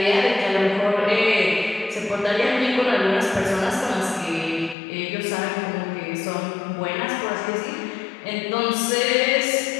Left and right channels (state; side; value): drops out; right; at 4.8 s